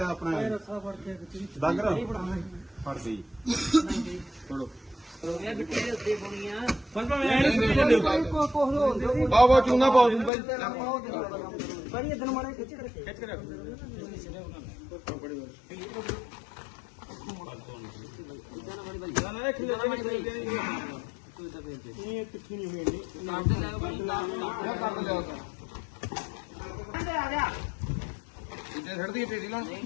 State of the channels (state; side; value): drops out; right; at 10.3 s